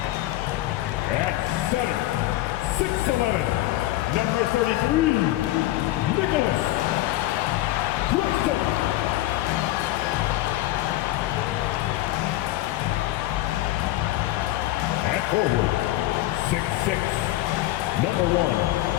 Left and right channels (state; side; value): quieter; right; 16.2 dB